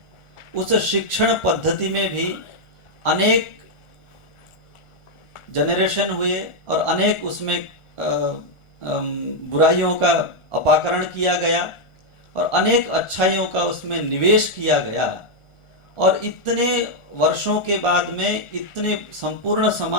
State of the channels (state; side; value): late; right; 1.4 ms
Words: उस शिक्षण पद्धति में भी अनेक जनरेशन हुए और अनेक उसमें बुराइयों का अपाकरण किया गया और अनेक अच्छाइयों का उसमें निवेश किया गया। और इतने वर्षों के बाद में इतने संपूर्ण